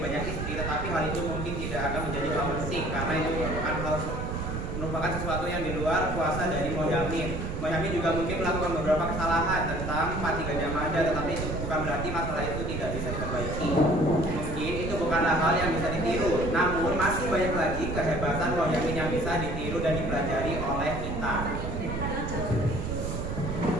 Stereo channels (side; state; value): right; noise; rumble, 4 dB below the sound